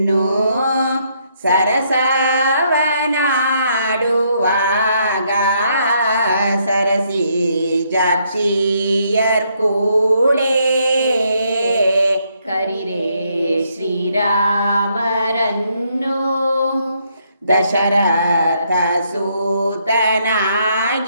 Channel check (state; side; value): inverted; both; correlation -0.73